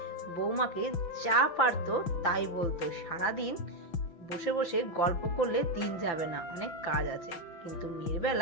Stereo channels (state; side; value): late; right; 5.9 ms